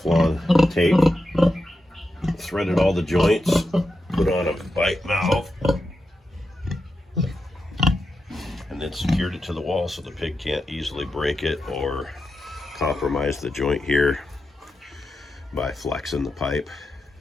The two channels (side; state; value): both; normal; correlation 0.88